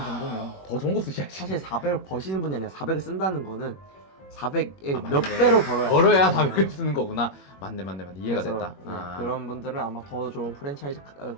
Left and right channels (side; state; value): right; late; 21 ms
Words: 정도면 더 좋은 거 쓰셔야지. 사실 400을 버시는 분이 아니라 400을 쓴다는 거는 400의 아, 몇 맞네. 배로 벌어야 벌어야 400을 쓰는 거구나. 맞네. 이해가 그래서, 됐다. 네, 아. 그런 분들은 아마 더 좋은 프랜차이즈